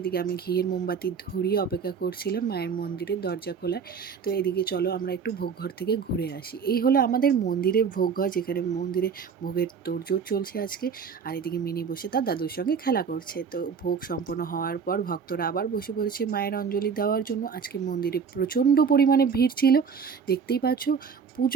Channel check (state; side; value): quieter; left; 6.2 dB